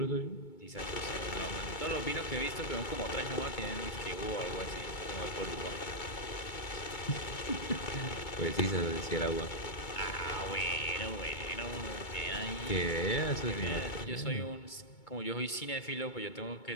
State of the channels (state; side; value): late; right; 2.2 ms